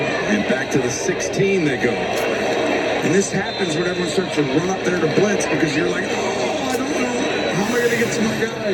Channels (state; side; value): identical; both; correlation 1.00